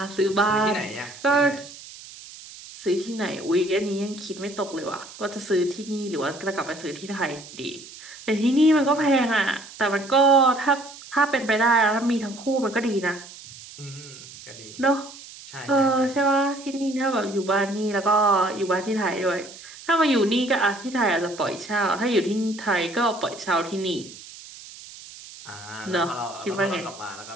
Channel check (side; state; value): right; noise; hiss, 17 dB below the sound